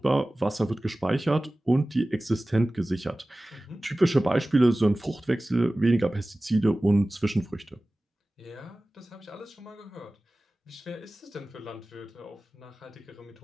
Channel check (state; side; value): normal; both; correlation 0.97